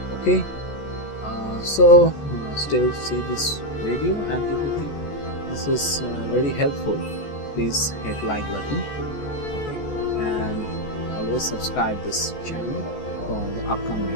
Okay, so still see this video, and if you think this is very helpful, please hit like button, okay, and always subscribe this channel for the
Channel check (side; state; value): right; late; 14 ms